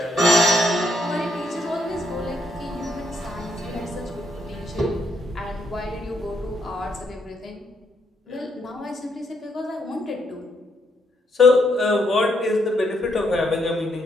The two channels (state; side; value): normal; both; correlation 0.75